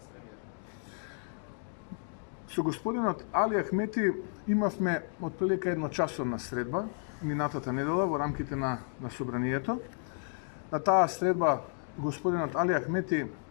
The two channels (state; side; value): silent; right; 56 dB below the other